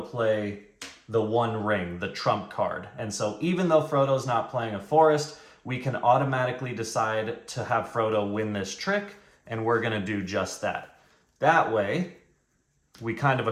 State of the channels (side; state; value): both; identical; correlation 1.00